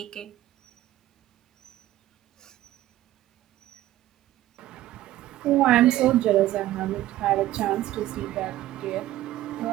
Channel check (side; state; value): left; quieter; 14.7 dB